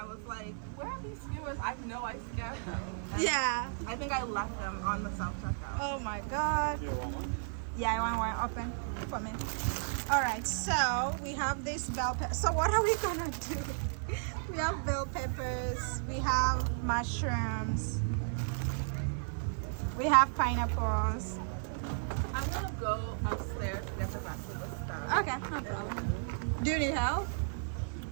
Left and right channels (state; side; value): silent; left; 55 dB below the other